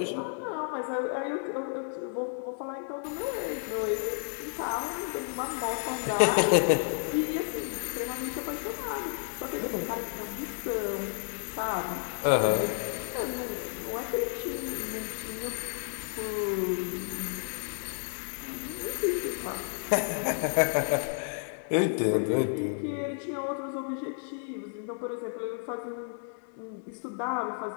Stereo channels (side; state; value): right; silent; 57 dB below the other